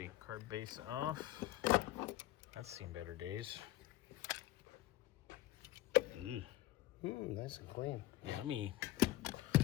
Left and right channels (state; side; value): quieter; right; 16.0 dB